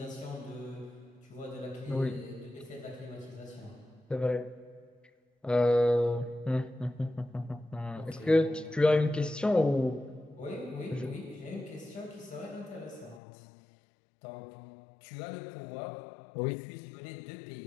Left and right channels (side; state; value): right; drops out; at 13.2 s